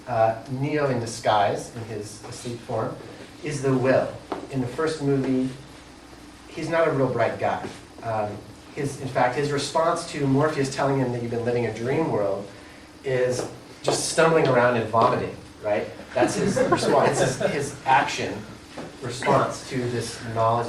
Neo in disguise, in his asleep form, is the will. In the first movie, he's not a real bright guy. In fact, his response to Morpheus telling him that you've been living a dream world is just stumbling around and vomiting, right? That's his response. It's his action response to this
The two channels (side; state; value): both; identical; correlation 1.00